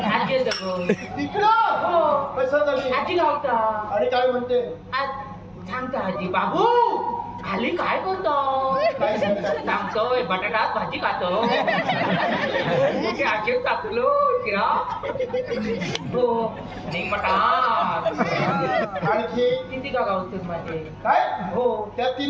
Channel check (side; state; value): both; identical; correlation 1.00